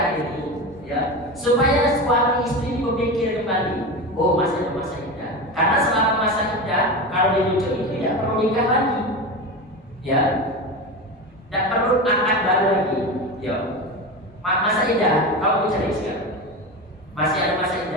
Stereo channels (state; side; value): normal; both; correlation 0.23